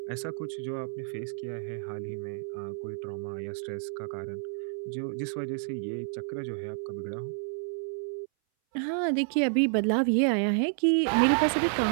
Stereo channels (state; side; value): silent; left; 58 dB below the other